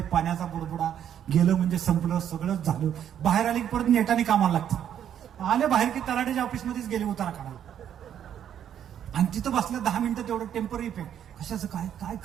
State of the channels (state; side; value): quieter; left; 9.7 dB